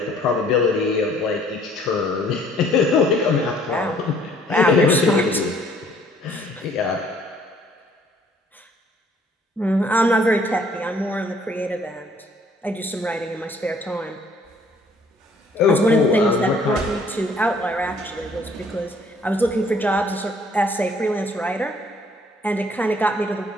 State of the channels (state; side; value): normal; both; correlation 0.60